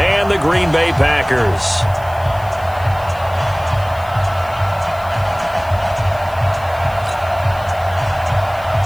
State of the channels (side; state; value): left; noise; hiss, 23 dB below the sound